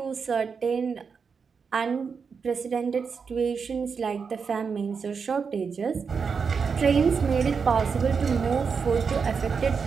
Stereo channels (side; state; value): left; quieter; 5.7 dB